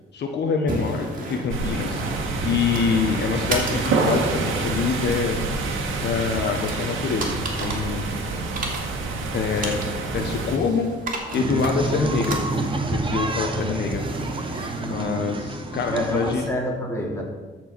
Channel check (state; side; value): normal; both; correlation 0.41